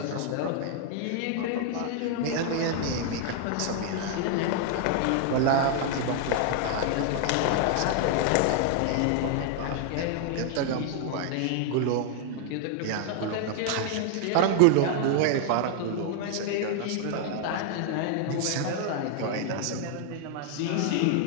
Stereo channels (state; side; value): different; both; correlation 0.00